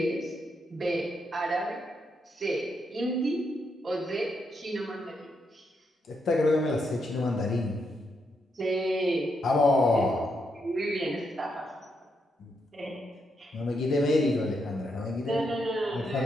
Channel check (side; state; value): both; normal; correlation 0.80